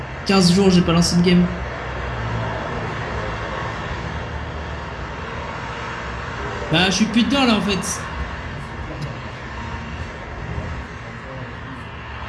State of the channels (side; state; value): both; identical; correlation 1.00